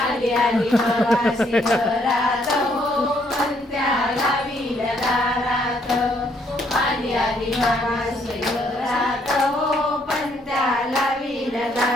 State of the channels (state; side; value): normal; both; correlation 0.69